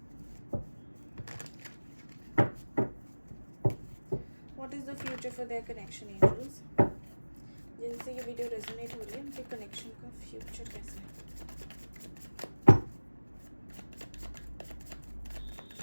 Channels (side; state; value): both; inverted; correlation -1.00